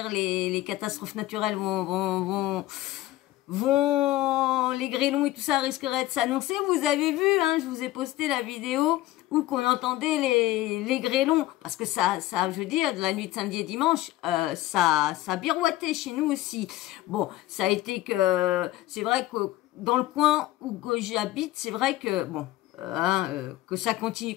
les catastrophes naturelles les grêlons et tout ça risqueraient de s'annoncer. Vous avez vu, hein, je vous ai posté la vidéo où qu'on entendait les grêlons, parce que ça, je veux dire, de la nuit de samedi et dimanche, ça birouettait chez nous aussi. Bon, ça a été que, c'est vrai que dans le coin où j'habite, c'est vrai que, bon, que ça continue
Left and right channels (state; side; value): quieter; right; 16.1 dB